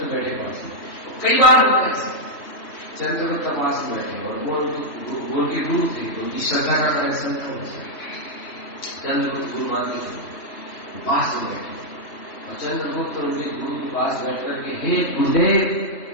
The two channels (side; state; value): right; late; 3.1 ms